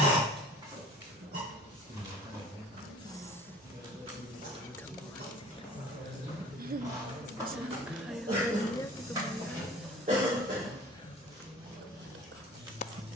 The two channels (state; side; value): normal; both; correlation 0.46